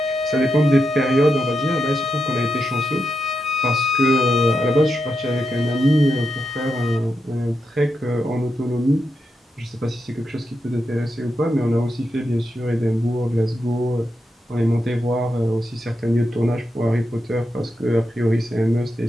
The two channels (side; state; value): both; normal; correlation 0.85